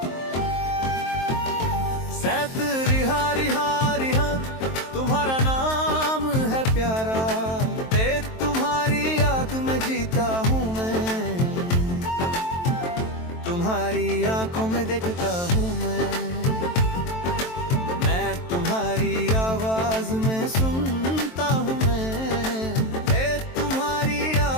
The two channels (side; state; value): right; late; 23 ms